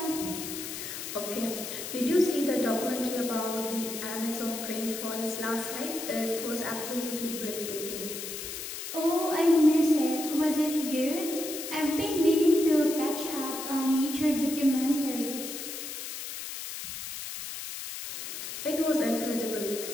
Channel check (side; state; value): left; noise; hiss, 7 dB below the sound